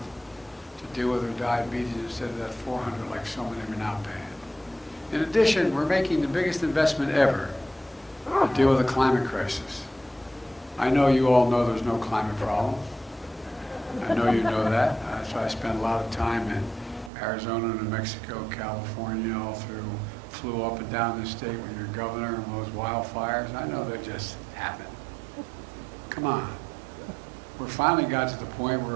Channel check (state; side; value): drops out; left; at 17.1 s